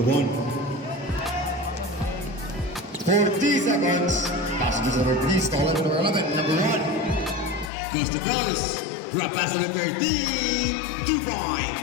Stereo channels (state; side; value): drops out; right; at 7.7 s